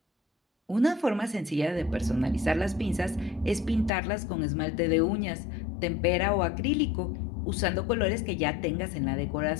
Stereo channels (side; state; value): right; drops out; at 3.9 s